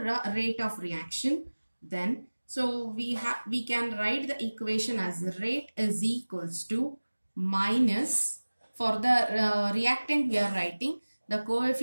rate of reaction, then so we can write the equation as rate is equals to minus, for the reactant we are writing the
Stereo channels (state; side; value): inverted; both; correlation -1.00